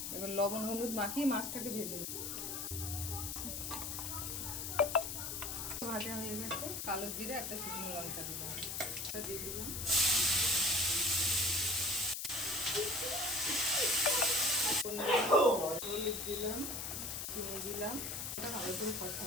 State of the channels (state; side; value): noise; left; hiss, 4 dB below the sound